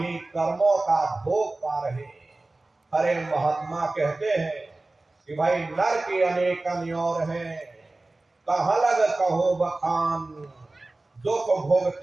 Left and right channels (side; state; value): left; quieter; 3.0 dB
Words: कर्मों का भोग पा रहे। हरे महात्मा कहते हैं कि भाई नर के अनेक अन्योर हैं, कहाँ लग कहो बखान, दुख